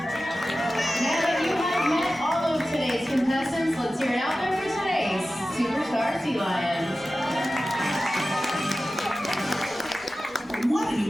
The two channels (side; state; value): both; normal; correlation 0.95